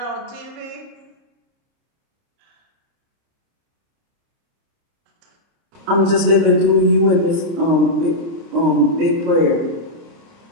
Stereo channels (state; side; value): late; left; 30 ms